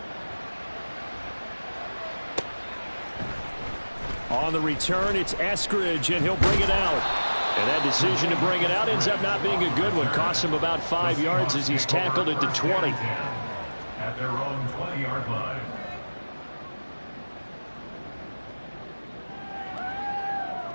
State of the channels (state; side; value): inverted; both; correlation -1.00